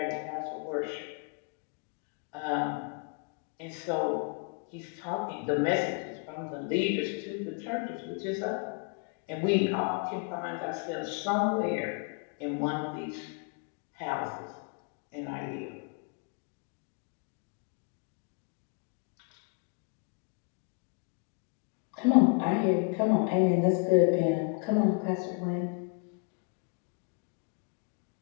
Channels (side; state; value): right; quieter; 37.5 dB